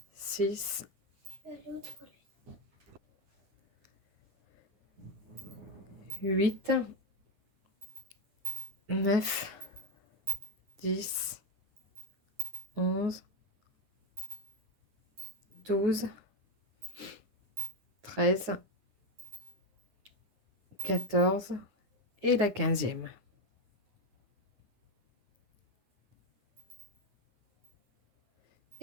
6, 8, 9, 10, 11, 12, 13, 14 et la 15e.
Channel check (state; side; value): late; left; 9.6 ms